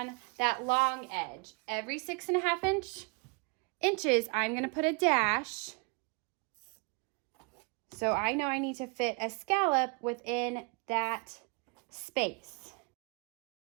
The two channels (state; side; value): quieter; left; 33.2 dB